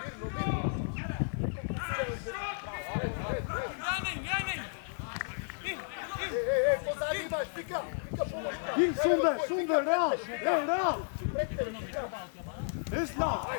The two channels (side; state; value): right; silent; digital silence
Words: Ej, pozadnji imaš, Vika, pomoć. Sunde, Real. Islam.